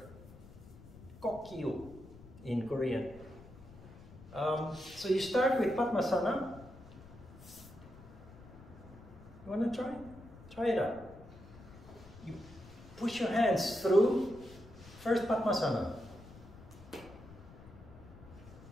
Kokyu in Korean. So you start with Padmasana. You want to try? Try it out. You push your hands through. First Padmasana.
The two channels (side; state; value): left; noise; rumble, 18 dB below the sound